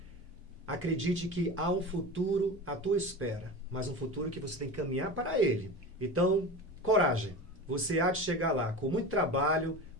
Acredite que há um futuro à tua espera, mas um futuro que você tem que caminhar para ele. Então, coragem. Você há de chegar lá com muito trabalho,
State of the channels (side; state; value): both; normal; correlation 0.29